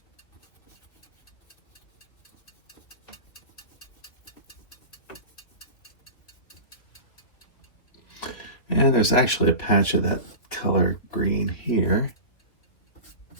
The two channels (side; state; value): right; late; 2.8 ms